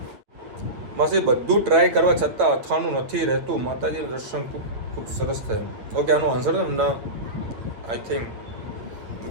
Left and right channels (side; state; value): left; late; 8.7 ms